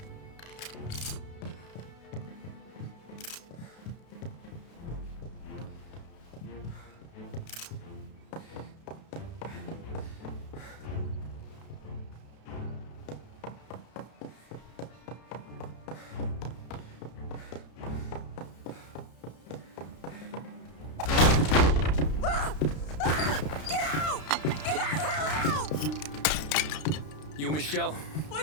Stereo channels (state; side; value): late; right; 32 ms